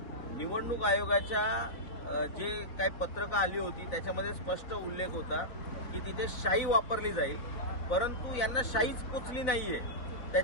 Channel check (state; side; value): late; right; 4.0 ms